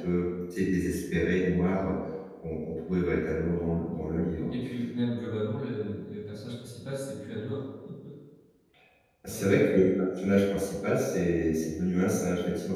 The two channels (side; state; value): both; identical; correlation 1.00